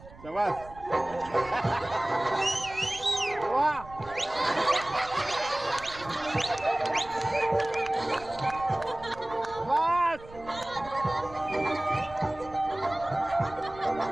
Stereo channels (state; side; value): noise; right; rumble, 19 dB below the sound